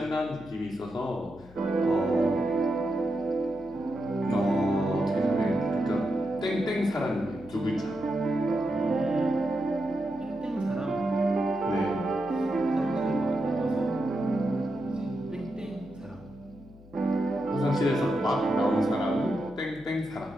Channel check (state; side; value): noise; left; hum, 22 dB below the sound